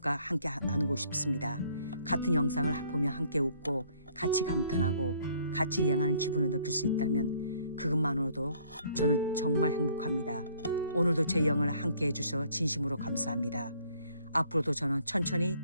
함께 나누고 싶습니다. 같은 영상을 보며 함께 웃고 같이 감탄하고 같이 여행하는 기분을 느낄 수 있다면 그것만으로도 저는 정말 행복합니다. 오늘도 제 여행을 함께 해주셔서 진심으로 감사합니다. 앞으로도 저는 천천히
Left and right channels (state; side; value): inverted; both; correlation -0.61